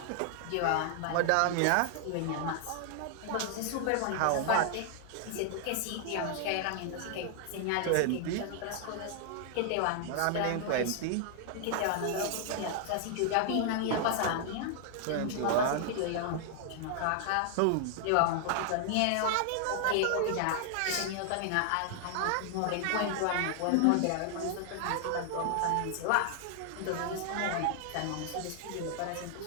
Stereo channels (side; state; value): both; different; correlation 0.00